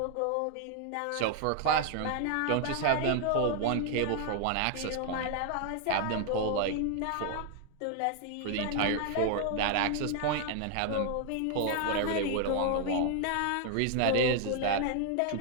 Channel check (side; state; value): both; different; correlation 0.00